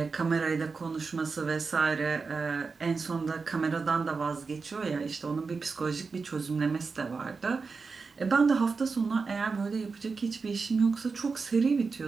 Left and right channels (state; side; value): quieter; left; 4.7 dB